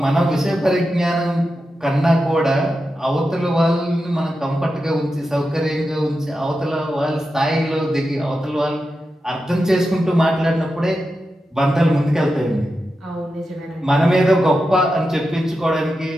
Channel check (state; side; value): normal; both; correlation 0.90